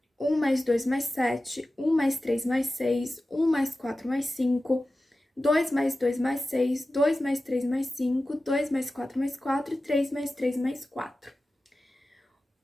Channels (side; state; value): both; normal; correlation 0.95